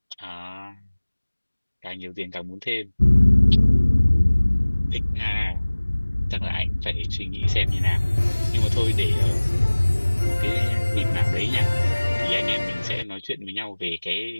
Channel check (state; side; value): inverted; both; correlation -1.00